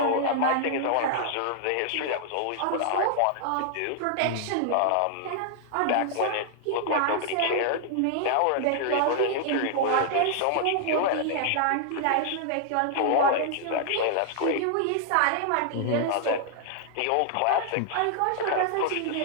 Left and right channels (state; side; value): different; both; correlation -0.01